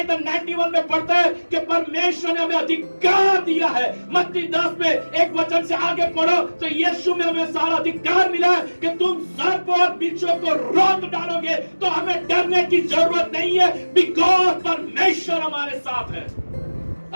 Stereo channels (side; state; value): both; inverted; correlation -1.00